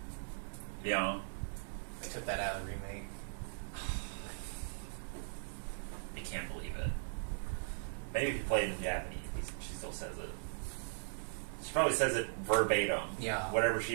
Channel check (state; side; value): silent; left; 52 dB below the other